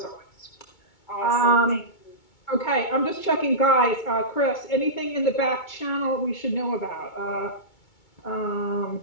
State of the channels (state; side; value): late; right; 2.2 ms